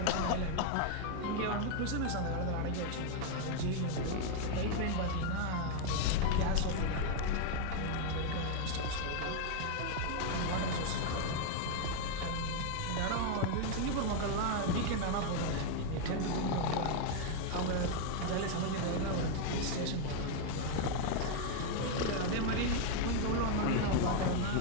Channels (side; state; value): both; different; correlation 0.00